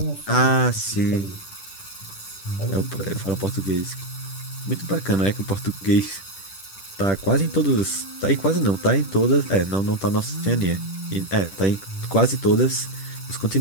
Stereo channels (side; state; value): right; late; 10 ms